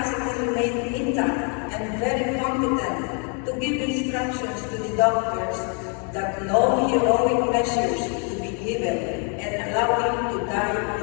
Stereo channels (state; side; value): quieter; right; 38.6 dB